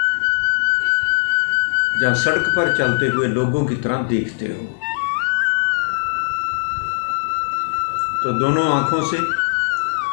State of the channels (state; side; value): silent; right; 61 dB below the other